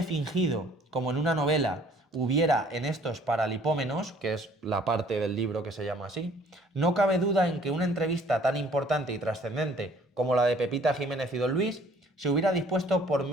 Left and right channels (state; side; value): normal; both; correlation 0.57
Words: fingido, como en una novela, hubiera en estos paralipómenos, que es la parte del libro que se llama así, no cabe duda en que una entrevista tan importante y trascendente como la de Pepita Jiménez y Don Luis se hubiera dispuesto por